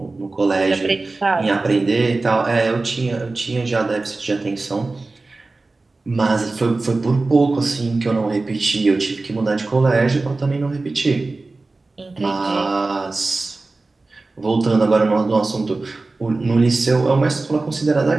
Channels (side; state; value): left; quieter; 3.4 dB